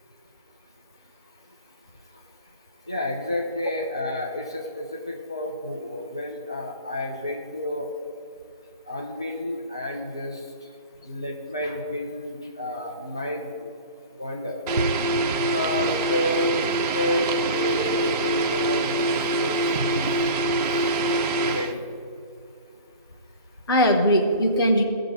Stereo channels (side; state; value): both; inverted; correlation -0.37